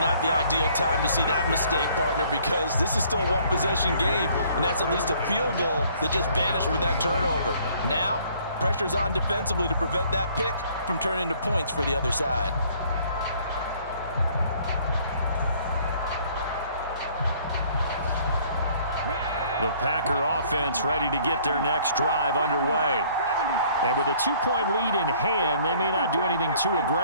the ideal time to see that mistake, partner, because this is still a one-possession game, and that's at least a field goal that just vanished with that turnover. Now, pressure's on defensively to prevent that pick from turning into points for the other side. The Packer offense ready to get their next drive underway. And with a 2-point lead in hand, they may not do anything too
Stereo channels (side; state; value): both; inverted; correlation -0.59